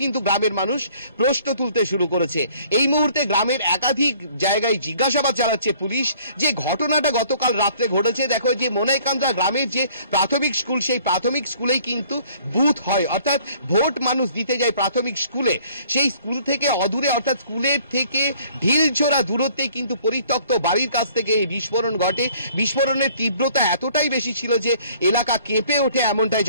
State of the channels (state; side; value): inverted; both; correlation -0.57